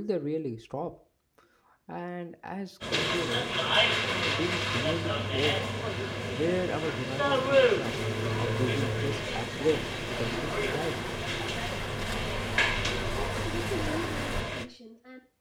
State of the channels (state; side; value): identical; both; correlation 1.00